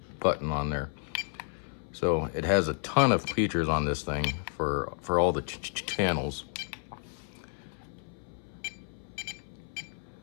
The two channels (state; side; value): silent; right; 57 dB below the other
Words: button on there. So it has a ton of features on this thing for all the channels.